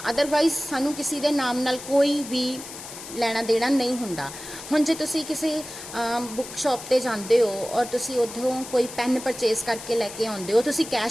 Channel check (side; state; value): left; noise; hiss, 12 dB below the sound